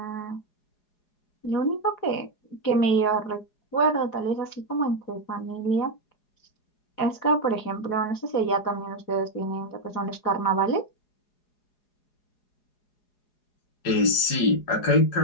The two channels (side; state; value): right; late; 4.8 ms